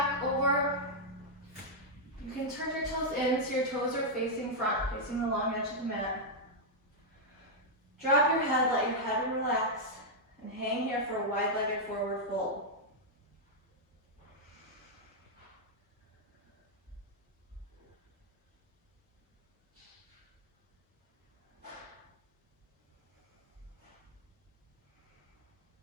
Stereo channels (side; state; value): both; normal; correlation -0.04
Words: over. You can turn your toes in so your toes are facing front, facing the long edge of the mat. Drop your head, let your head relax, and hang here for a wide-legged forward fold.